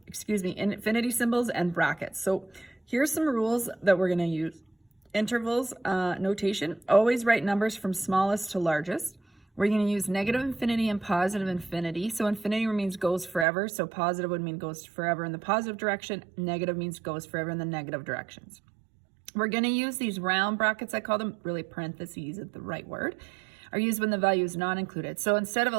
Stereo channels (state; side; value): drops out; left; at 13.5 s